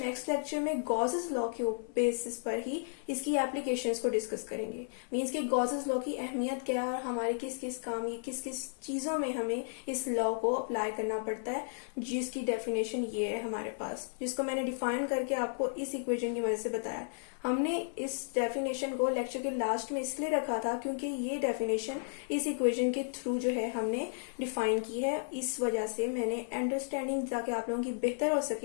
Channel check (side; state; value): right; silent; 55 dB below the other